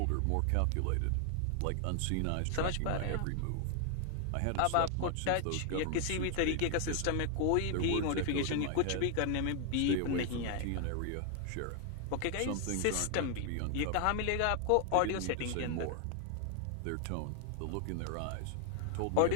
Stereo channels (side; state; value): both; different; correlation 0.00